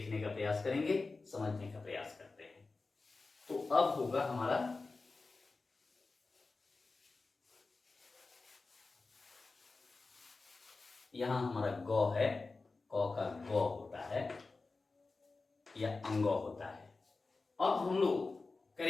का प्रयास करेंगे, समझने का प्रयास करते हैं। तो अब होगा हमारा यहां हमारा गौ है, क का गौ होता है या अंगौ होता है। अब हम लोग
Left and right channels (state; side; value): quieter; right; 3.8 dB